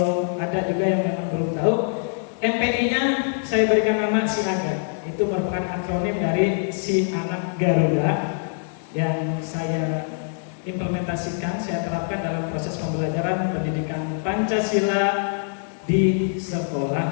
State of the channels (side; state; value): right; silent; digital silence